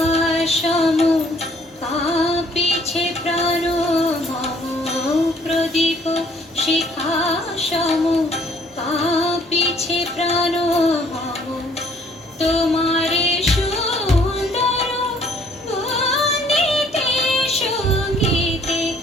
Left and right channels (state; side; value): normal; both; correlation 0.61